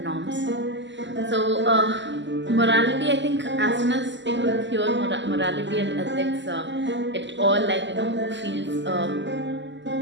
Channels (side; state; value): left; late; 0.53 ms